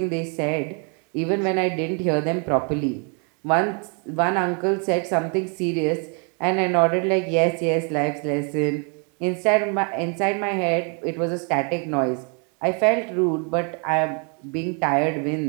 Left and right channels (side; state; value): left; quieter; 37.8 dB